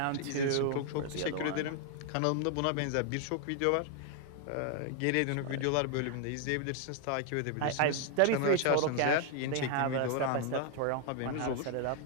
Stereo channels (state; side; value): different; both; correlation 0.00